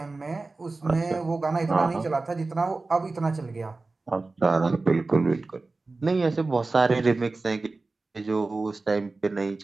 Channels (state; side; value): quieter; left; 3.5 dB